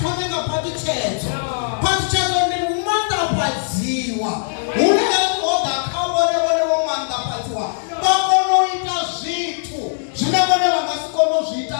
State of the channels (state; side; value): silent; right; digital silence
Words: thome nga phaṱhutshedzo. Phaṱhutshedzo ndi u maanḓafhadziwa hune ho ḓa kha vhone vho maanḓafhadziwa vha kona u ita zwithu zwine vhone vha nga si kone u zwi ita